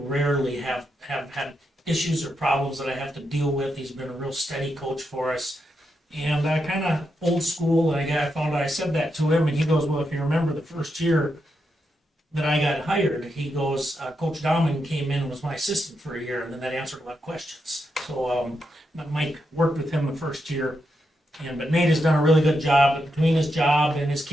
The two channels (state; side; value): normal; both; correlation 0.84